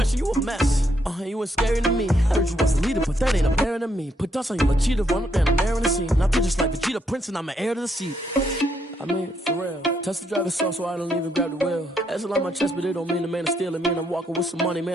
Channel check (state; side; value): normal; both; correlation 0.75